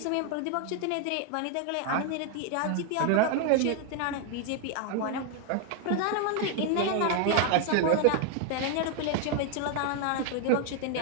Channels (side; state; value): both; different; correlation 0.00